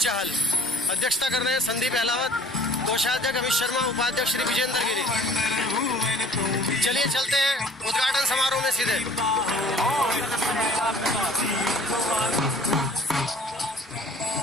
चाहल, अध्यक्षता कर रहे हैं संदीप अहलावत, कोषाध्यक्ष अमित शर्मा, उपाध्यक्ष श्री विजेंद्र गिरी। चलिए चलते हैं उद्घाटन समारोह में सीधे।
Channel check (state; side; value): normal; both; correlation 0.51